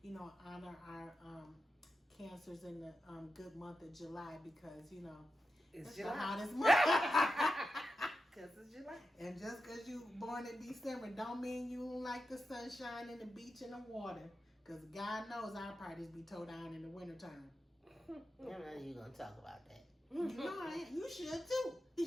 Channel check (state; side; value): normal; both; correlation 0.91